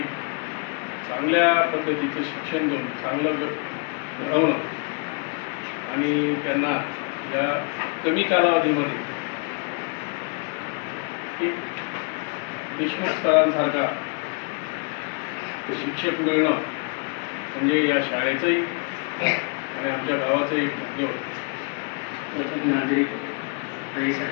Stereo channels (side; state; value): right; quieter; 37.7 dB